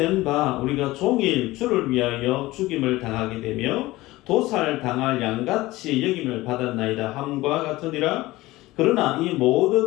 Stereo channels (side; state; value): right; quieter; 18.7 dB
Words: 바 우리가 종일 주를 위하여 죽임을 당하게 되며 도살당할 양같이 여김을 받았나이다 함과 같으니라. 그러나 이